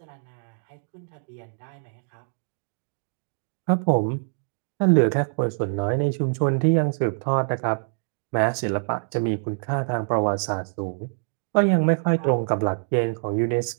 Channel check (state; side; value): silent; left; digital silence